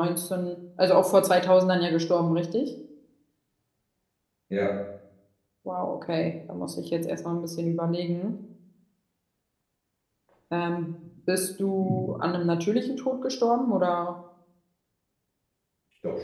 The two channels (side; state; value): both; identical; correlation 1.00